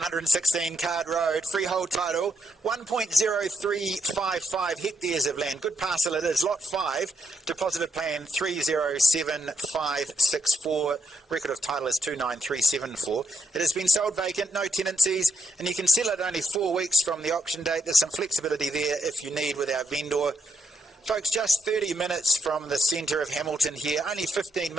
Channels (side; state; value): both; normal; correlation 0.81